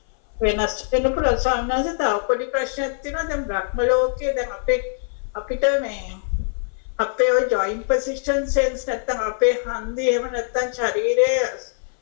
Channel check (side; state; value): right; silent; 61 dB below the other